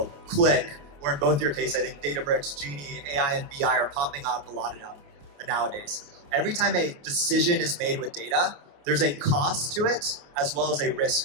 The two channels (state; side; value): late; left; 28 ms